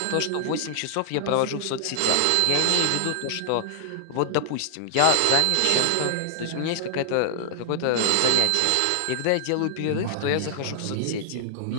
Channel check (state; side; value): different; both; correlation -0.01